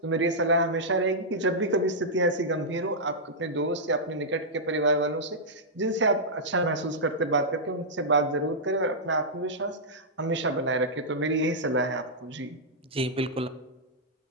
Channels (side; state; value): both; normal; correlation -0.10